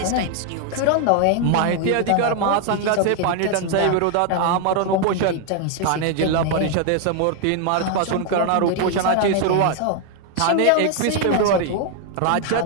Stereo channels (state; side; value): different; both; correlation 0.00